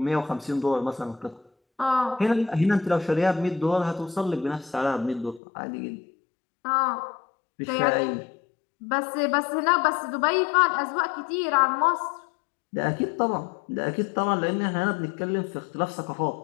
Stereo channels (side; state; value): right; drops out; at 5.4 s